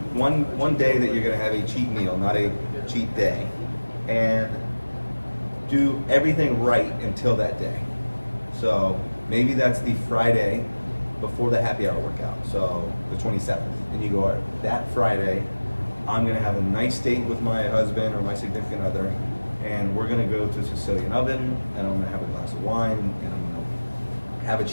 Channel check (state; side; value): inverted; both; correlation -1.00